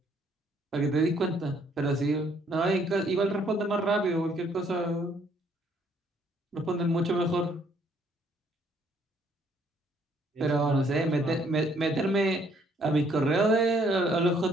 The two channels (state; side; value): normal; both; correlation 0.65